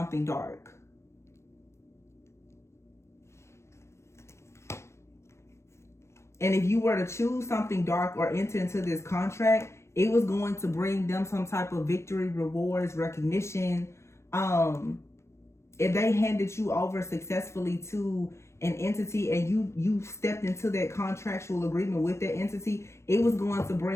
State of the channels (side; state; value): right; late; 0.13 ms